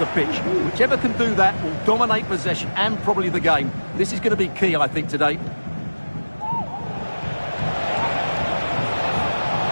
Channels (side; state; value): both; inverted; correlation -1.00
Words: pitch. Whichever can do that will dominate possession and probably the game. This is going to be key, I think, today.